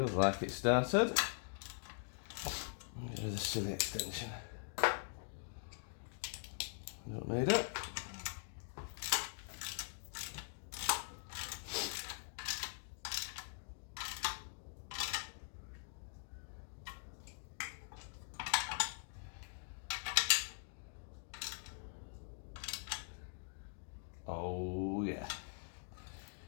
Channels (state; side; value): silent; right; digital silence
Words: like it started. Do the silly extension. Don't need it. Oh yeah.